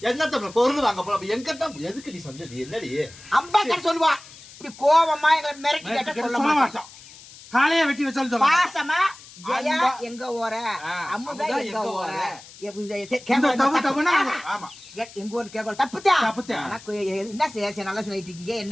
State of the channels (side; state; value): left; noise; hiss, 19 dB below the sound